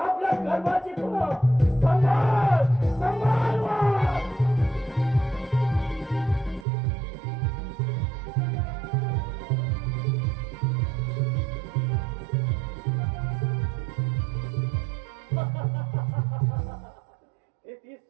कर्माची फळं. संभाळ संभाळ वाट. हे 30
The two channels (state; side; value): drops out; left; at 6.7 s